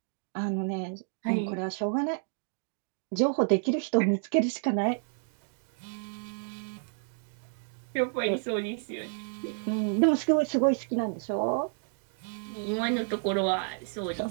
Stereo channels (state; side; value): silent; left; digital silence